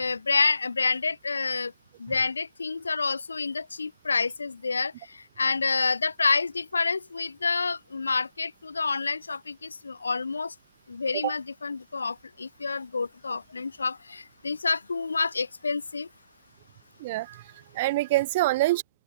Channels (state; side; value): inverted; both; correlation -0.80